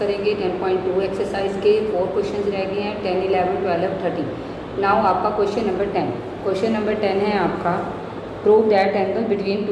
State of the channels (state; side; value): identical; both; correlation 1.00